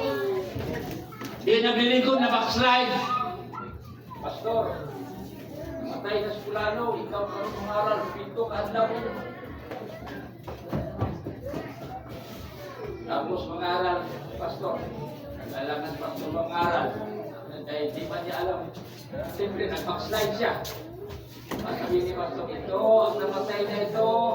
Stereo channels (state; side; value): identical; both; correlation 1.00